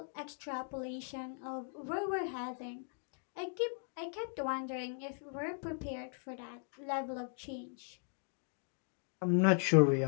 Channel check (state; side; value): silent; right; 52 dB below the other